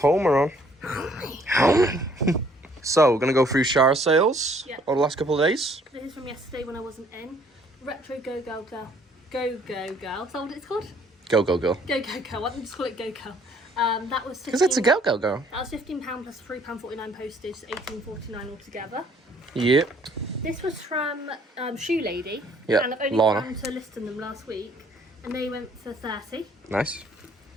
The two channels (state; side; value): normal; both; correlation 0.62